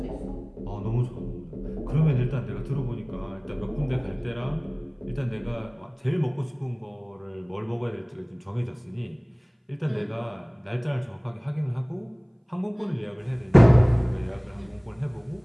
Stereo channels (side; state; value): both; identical; correlation 1.00